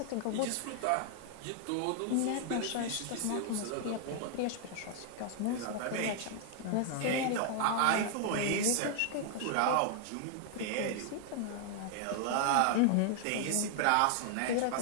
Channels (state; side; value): different; both; correlation 0.00